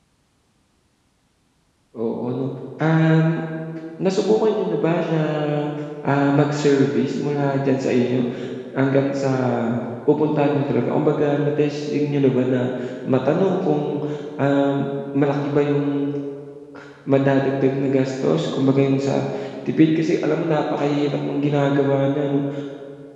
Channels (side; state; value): both; identical; correlation 1.00